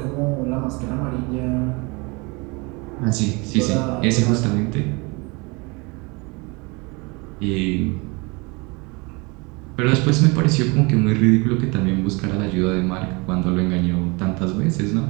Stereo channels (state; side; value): quieter; left; 27.8 dB